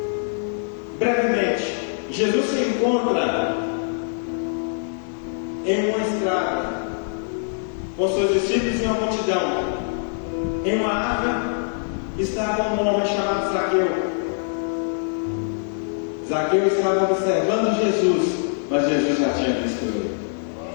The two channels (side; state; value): right; silent; 60 dB below the other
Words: Brevemente, Jesus se encontra em uma estrada com seus discípulos e uma multidão. Em uma árvore estava um homem chamado Zaqueu. Zaqueu estava observando Jesus, mas Jesus já tinha visto ele.